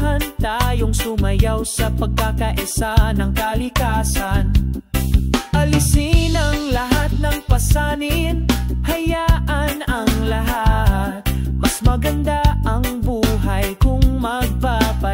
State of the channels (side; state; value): both; identical; correlation 1.00